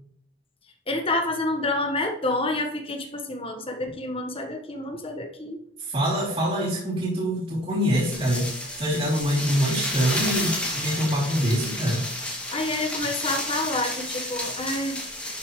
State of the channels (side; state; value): both; normal; correlation 0.43